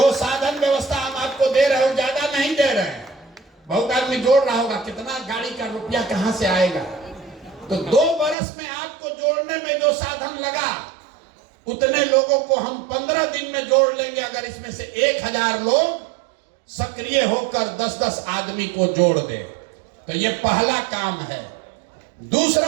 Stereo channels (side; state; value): left; drops out; at 8.3 s